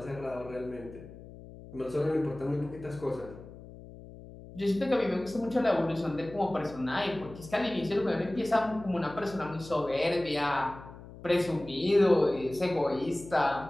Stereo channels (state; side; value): noise; left; hum, 16 dB below the sound